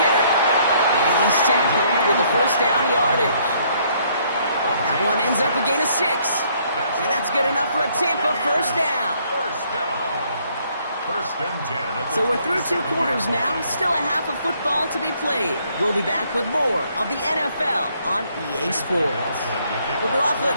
And he's tackled with the 1st down yardage. That one ends up a gain of 6. And that's good enough for a Tampa 1st down. So we're through 2 quarters now. Still a half of football to be played. We'll be back with more of the NFL on EA Sports. McLaughlin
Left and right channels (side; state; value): both; inverted; correlation -0.66